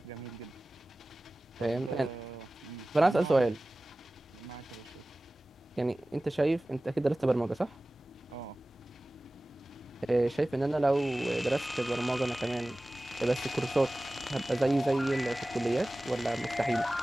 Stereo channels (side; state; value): both; normal; correlation 0.97